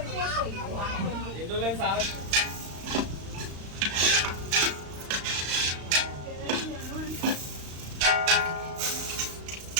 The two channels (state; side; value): late; left; 35 ms